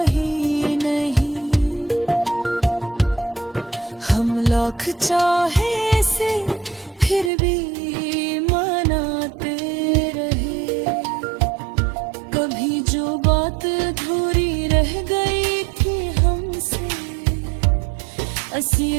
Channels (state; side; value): drops out; left; at 7.3 s